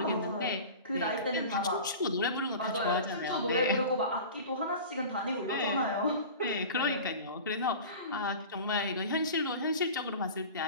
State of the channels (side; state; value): both; inverted; correlation -0.36